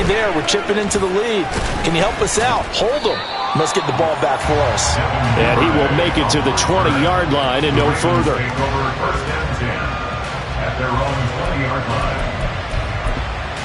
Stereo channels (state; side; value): identical; both; correlation 1.00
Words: there. We're chipping into the lead. Can you help us out? Hold them. Must get the ball back for us. And he will make it to the 20-yard line and no further. At their own 20-yard line.